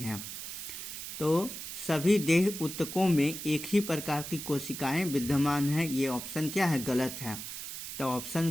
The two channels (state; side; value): noise; right; hiss, 8 dB below the sound